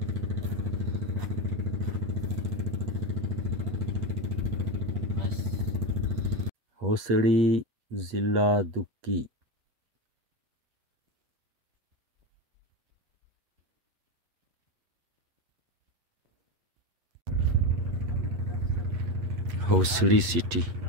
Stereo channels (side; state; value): left; late; 8.5 ms